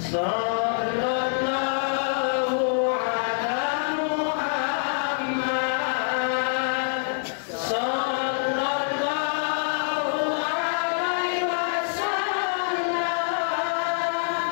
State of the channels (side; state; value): right; silent; 60 dB below the other